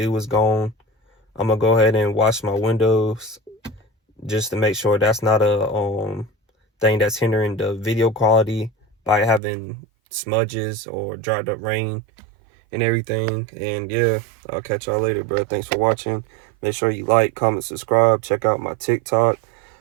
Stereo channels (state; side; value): drops out; left; at 9.4 s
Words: is gone. I'm gonna go ahead and wash my windows just to make sure that's not a thing that's hindering the video quality by having smudges or dried up rain and everything. And yeah, I'll catch y'all later, bro. Thanks for watching. Make sure you like, comment, subscribe. Check out my TikTok.